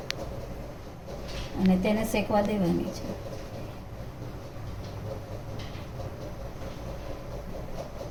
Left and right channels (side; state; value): both; identical; correlation 1.00